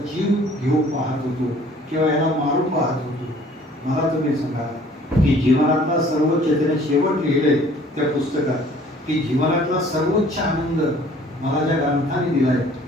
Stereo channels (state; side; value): normal; both; correlation 0.54